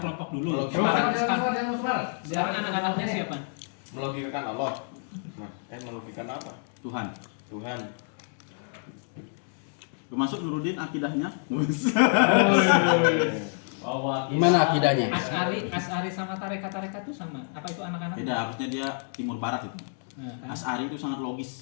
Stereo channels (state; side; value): silent; right; 59 dB below the other